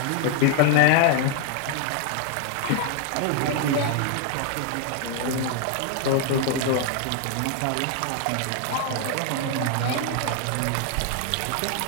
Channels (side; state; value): both; different; correlation 0.00